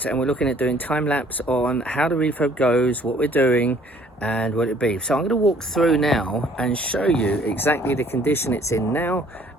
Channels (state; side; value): normal; both; correlation 0.59